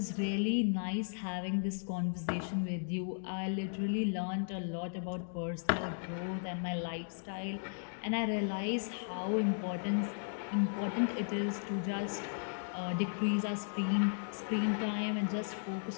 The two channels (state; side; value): silent; right; digital silence